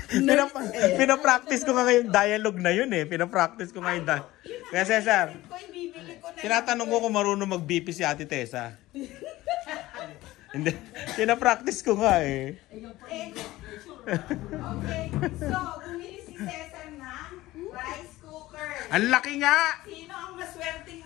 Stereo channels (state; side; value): quieter; right; 17.3 dB